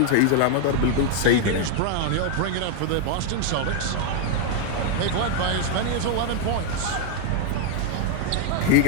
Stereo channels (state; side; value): different; both; correlation 0.00